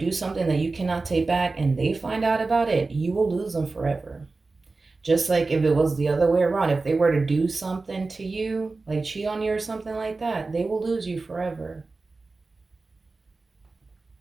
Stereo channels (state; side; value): quieter; left; 3.7 dB